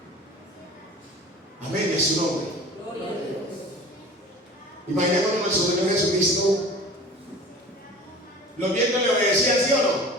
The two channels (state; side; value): normal; both; correlation 0.41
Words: Amén, es su nombre. Imaginémonos nuestro Señor Jesucristo. Los vientos le obedecían, ¿sí o no?